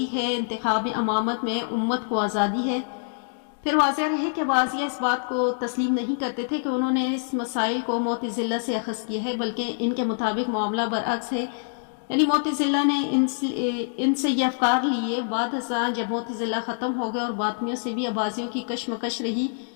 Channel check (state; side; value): silent; right; digital silence